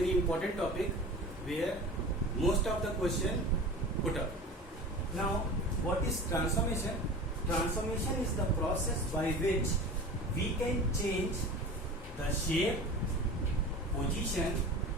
important topic where most of the question put up. Now, what is transformation? Transformation is the process by which we can change the shape, position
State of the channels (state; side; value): normal; both; correlation 0.35